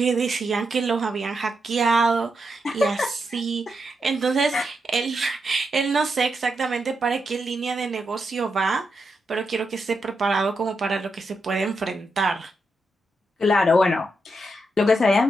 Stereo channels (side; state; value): both; normal; correlation 0.84